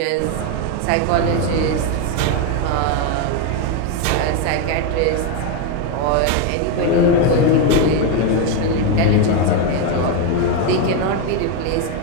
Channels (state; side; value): different; both; correlation 0.02